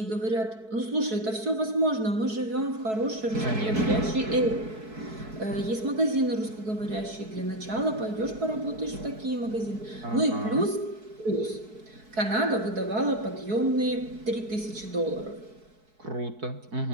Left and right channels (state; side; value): late; left; 4.6 ms